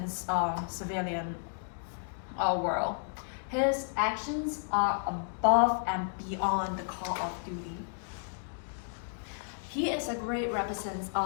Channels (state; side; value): silent; right; digital silence